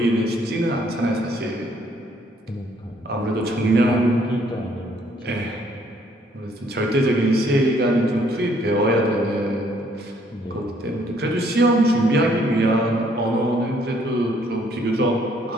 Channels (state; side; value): normal; both; correlation 0.65